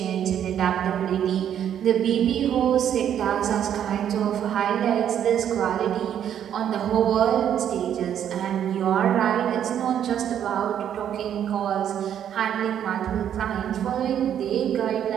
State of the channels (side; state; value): left; quieter; 9.7 dB